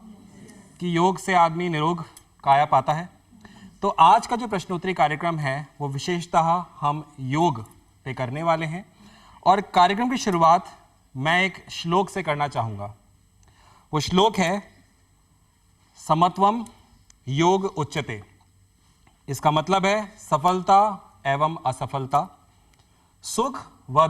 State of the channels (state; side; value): identical; both; correlation 1.00